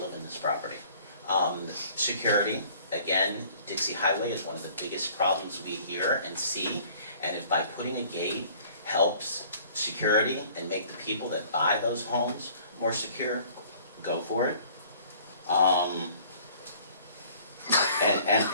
in this property. Security, again, Dixie Highway is one of the biggest problems we hear and see. And if by putting a gate helps security and make the people that buy those homes more secure, go for it. And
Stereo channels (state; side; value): inverted; both; correlation -0.53